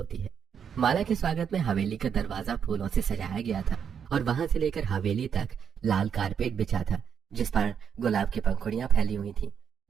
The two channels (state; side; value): quieter; left; 7.6 dB